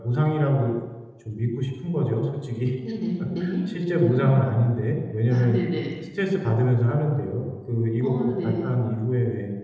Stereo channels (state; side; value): identical; both; correlation 1.00